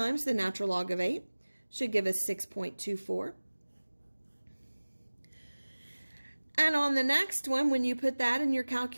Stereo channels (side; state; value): both; inverted; correlation -1.00